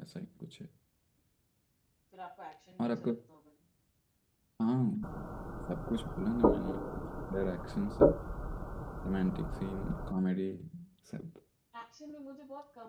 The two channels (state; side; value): identical; both; correlation 1.00